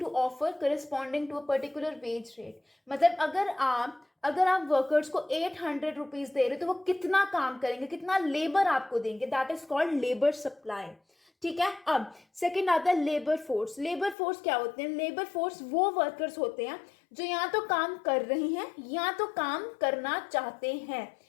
offer corresponding to a particular wage rate. मतलब अगर आप वर्कर्स को 800 रुपीज दे रहे हो तो वो कितना काम करेंगे, कितना लेबर आपको देंगे, that is called labour supply. ठीक है, अब सेकंड आता है लेबर फोर्स. लेबर फोर्स क्या होते हैं? लेबर फोर्स वो वर्कर्स होते हैं जो या तो काम कर रहे हैं या तो काम करना चाहते हैं.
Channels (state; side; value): drops out; right; at 14.2 s